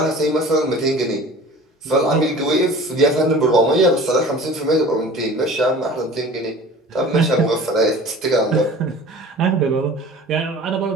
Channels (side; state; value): both; normal; correlation 0.42